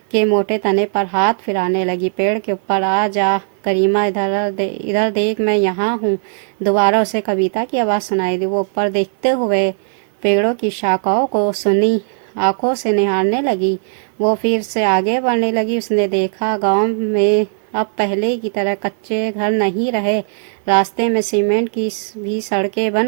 मोटे तने पर हाथ फिराने लगी। पेड़ के ऊपर आ जा गरिमा, इधर देख, मैं यहाँ हूँ। दोबारा उसे कविता की आवाज़ सुनाई दी। वो ऊपर देखते हुए पेड़ों की शाखाओं को सुनी आंखों से निहारने लगी। वो फिर से आगे बढ़ने लगी। उसने देखा गांव में अब पहले की तरह कच्चे घर नहीं रहे। रास्ते में सीमेंट की भी सड़कें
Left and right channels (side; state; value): left; silent; digital silence